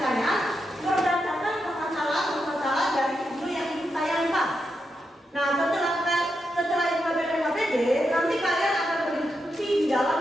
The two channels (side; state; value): both; normal; correlation 0.85